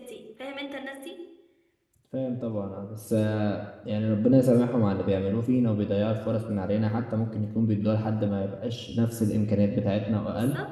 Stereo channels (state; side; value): identical; both; correlation 1.00